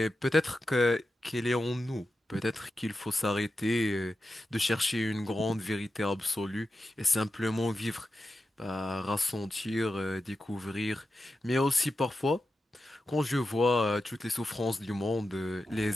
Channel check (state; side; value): normal; both; correlation 0.91